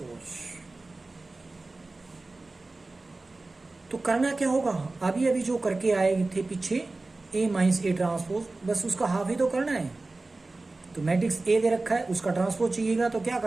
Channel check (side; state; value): left; quieter; 3.3 dB